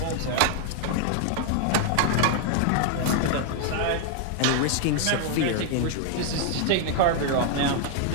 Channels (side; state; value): both; different; correlation 0.00